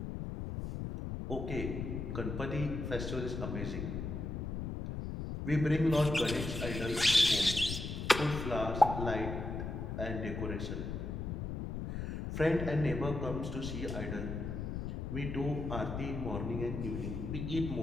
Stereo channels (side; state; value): left; noise; rumble, 4 dB below the sound